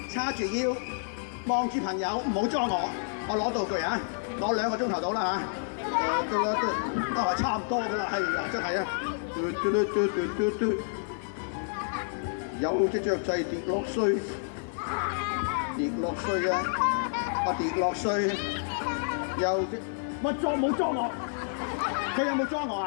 叉住腰，望住朋友，唔好裝我攞道具啊，攞2個鐘頭到啦嚇，都係差唔多噶啦，係啊，真係啊，有隻雀仔跌落水，跌落水啊，跌落水，有隻，喂冇裝我，佢有冇裝我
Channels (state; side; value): silent; right; 58 dB below the other